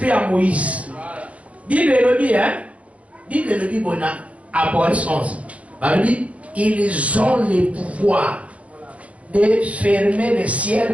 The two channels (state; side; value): late; left; 0.064 ms